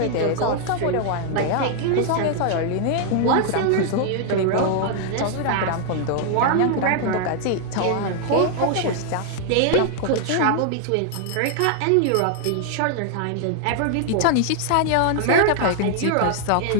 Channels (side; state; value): both; different; correlation 0.00